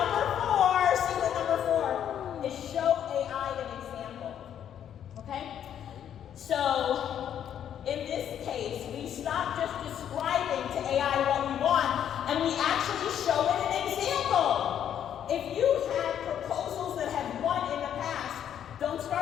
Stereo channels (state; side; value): quieter; right; 9.7 dB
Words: 4. Secret number 4 is show AI an example. Okay? So, in this case, we stop just describing to AI what we want, and we actually show it an example. If you have proposals that have won in the past, don't